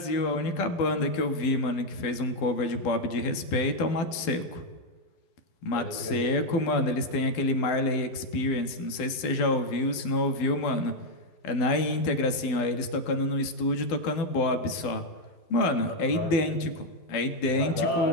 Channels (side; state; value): right; late; 12 ms